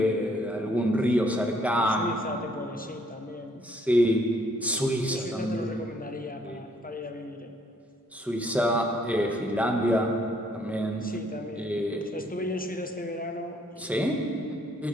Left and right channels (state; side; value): normal; both; correlation 0.65